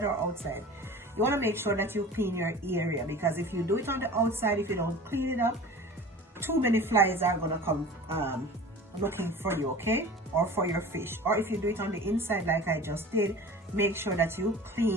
or outside, you want to make sure that you clean your area, because if you do it on the outside, if you don't clean it up, too many flies are going to come looking for you, okay, or for your fish. Or if you do it on the inside like I just did, make sure that you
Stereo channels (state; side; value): normal; both; correlation 0.39